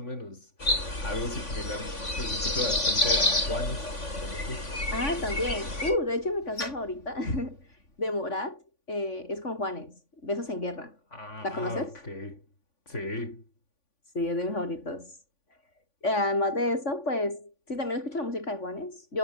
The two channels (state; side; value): late; right; 3.5 ms